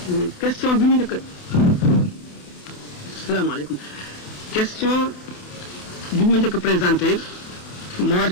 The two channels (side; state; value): right; late; 28 ms